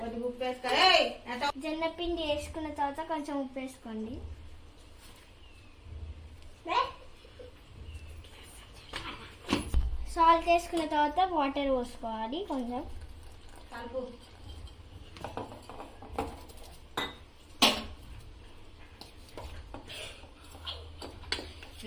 జొన్న పిండి వేసుకున్న తర్వాత కొంచెం ఉప్పు వేసుకోండి. సాల్ట్ వేసుకున్న తర్వాత వాటర్ పోసుకోవాలి కొంచెం.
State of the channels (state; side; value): identical; both; correlation 1.00